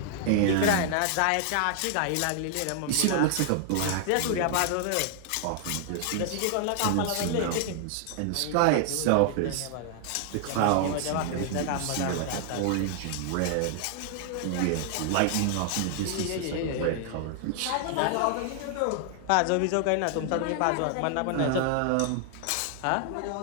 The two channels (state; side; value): different; both; correlation 0.00